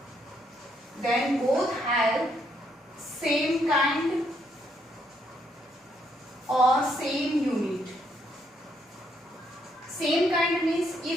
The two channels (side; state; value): both; normal; correlation 0.74